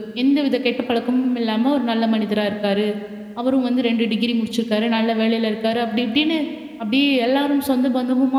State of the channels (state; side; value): identical; both; correlation 1.00